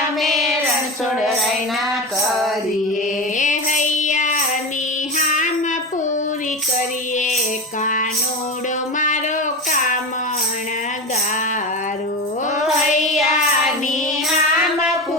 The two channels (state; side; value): normal; both; correlation 0.23